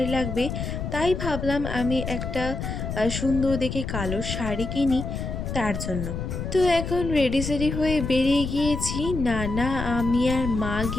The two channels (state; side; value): noise; left; rumble, 4 dB below the sound